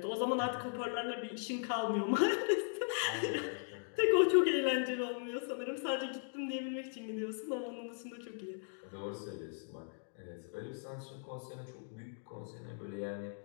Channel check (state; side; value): silent; right; digital silence